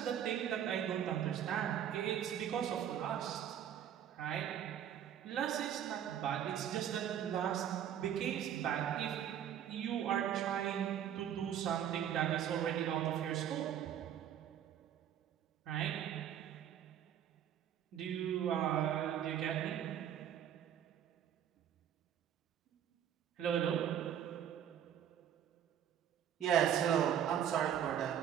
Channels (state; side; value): quieter; left; 9.8 dB